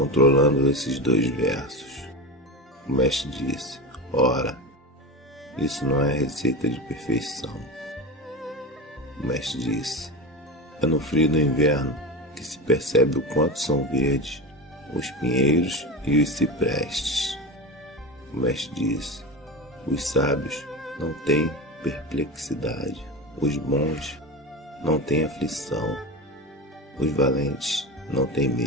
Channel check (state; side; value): normal; both; correlation 0.24